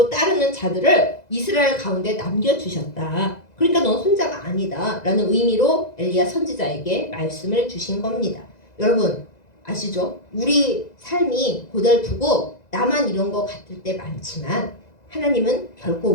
따르는 자들을 이스라엘 가운데 남겨주셨다. 그러니까 넌 혼자가 아니다 라는 의미로 엘리야 선지자에게 말씀을 주신 겁니다. 여러분 아시죠? 우리 삶이 고달프고 나만 이런 거 같을 때 많지만 하나님은 결코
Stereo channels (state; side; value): late; right; 2.0 ms